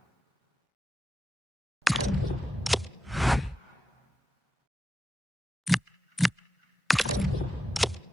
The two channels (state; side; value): normal; both; correlation 0.89